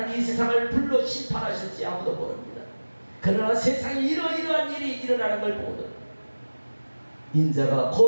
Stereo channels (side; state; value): both; inverted; correlation -1.00